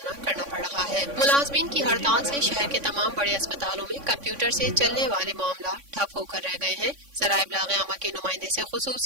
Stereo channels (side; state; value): left; late; 3.5 ms